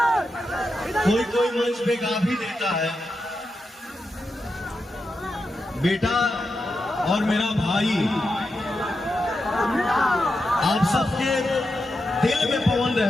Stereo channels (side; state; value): both; normal; correlation 0.88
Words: कोई कोई मंच पे गा भी देता है, बेटा और मेरा भाई आप सबके दिल में पवन